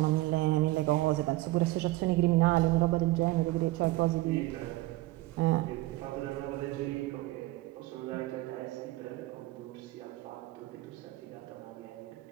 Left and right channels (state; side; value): quieter; left; 18.8 dB